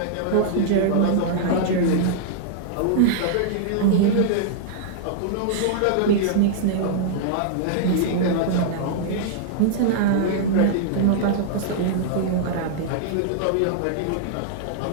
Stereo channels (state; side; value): different; both; correlation -0.01